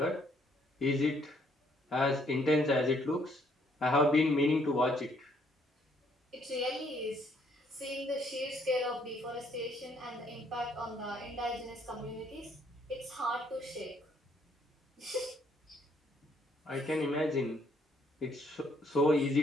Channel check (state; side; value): normal; both; correlation 0.67